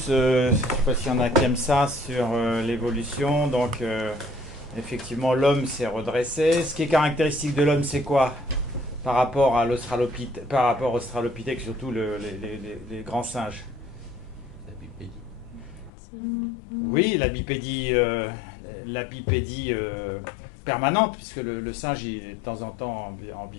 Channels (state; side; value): drops out; right; at 15.9 s